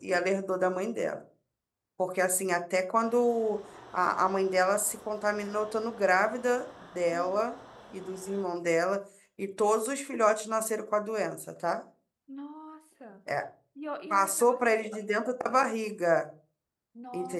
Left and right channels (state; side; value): identical; both; correlation 1.00